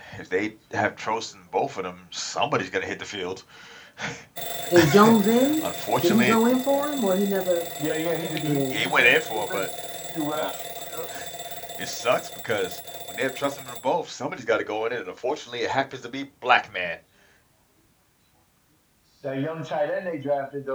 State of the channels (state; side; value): identical; both; correlation 1.00